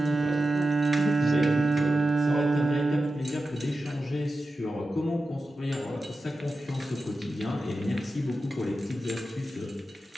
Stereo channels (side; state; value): both; normal; correlation 0.92